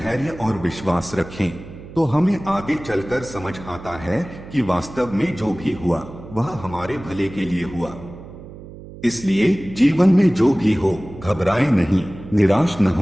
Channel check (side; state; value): right; noise; hum, 15 dB below the sound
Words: और विश्वास रखें तो हमें आगे चलकर समझ आता है कि वास्तव में जो भी हुआ वह हमारे भले के लिए हुआ। इसलिए जीवन में जो भी हो, घबराएं नहीं, निराश न